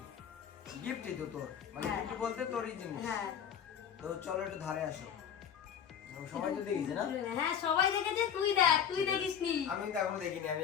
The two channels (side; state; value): right; quieter; 8.4 dB